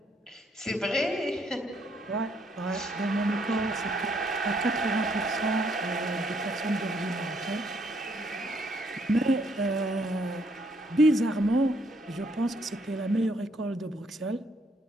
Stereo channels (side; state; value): both; normal; correlation 0.70